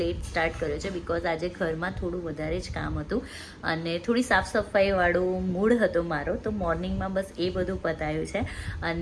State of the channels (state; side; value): identical; both; correlation 1.00